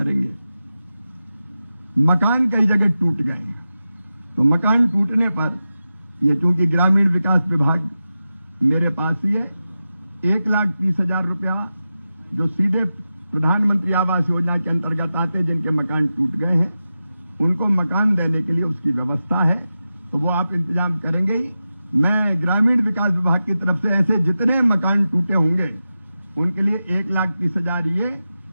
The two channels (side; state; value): both; inverted; correlation -0.92